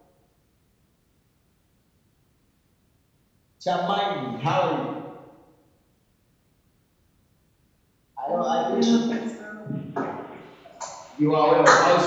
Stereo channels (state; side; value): identical; both; correlation 1.00